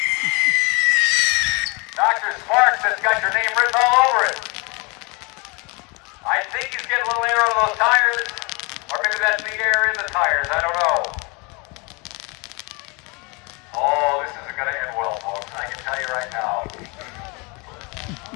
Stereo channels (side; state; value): right; quieter; 29.4 dB